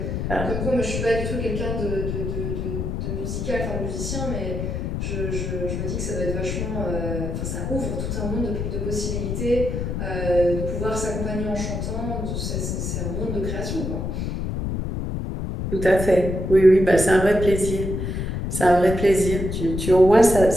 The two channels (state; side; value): noise; left; rumble, 3 dB below the sound